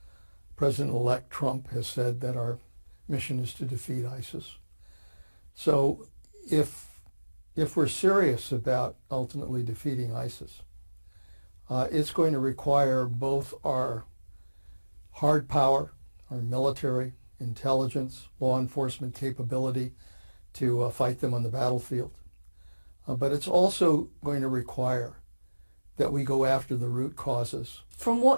President-elect Trump has said that our mission is to defeat ISIS. So if we're serious about ultimately defeating ISIS, it's going to require both our hard power, our military, intelligence, law enforcement capability to fight them on the battlefield. But it's also going to require that we go after the root causes. From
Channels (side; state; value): both; inverted; correlation -1.00